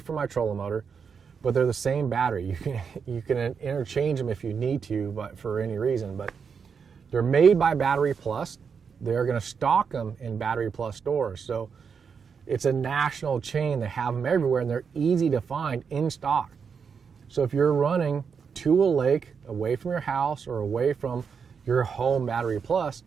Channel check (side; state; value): left; quieter; 6.2 dB